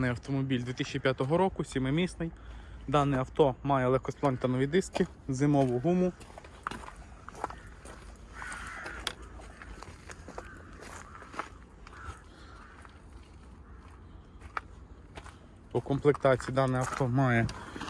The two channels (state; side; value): identical; both; correlation 1.00